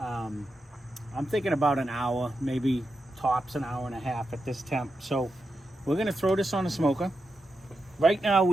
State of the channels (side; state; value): both; normal; correlation 0.88